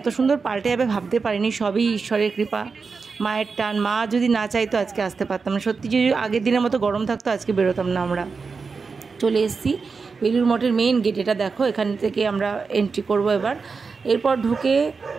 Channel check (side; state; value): left; quieter; 4.8 dB